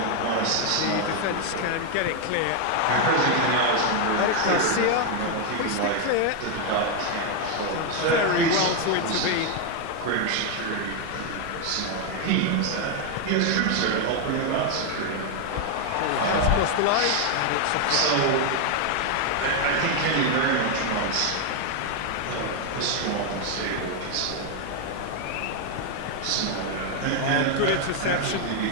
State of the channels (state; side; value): different; both; correlation 0.01